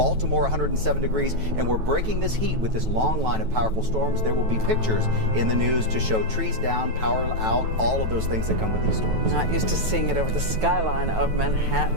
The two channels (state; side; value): late; left; 9.2 ms